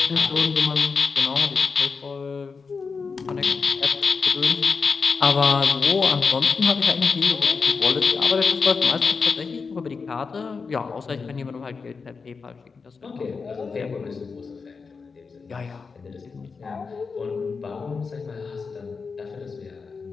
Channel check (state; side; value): quieter; right; 5.0 dB